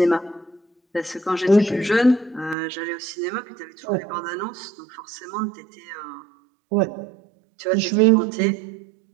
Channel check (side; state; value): left; drops out; at 2.6 s